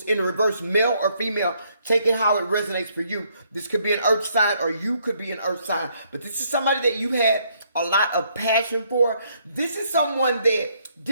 in reverse, male or female, taking how it resonates for you. This could be an earth sign, or you could be an earth sign, but this is somebody that you had a lot of passion for. This is someone that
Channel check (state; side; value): inverted; both; correlation -0.70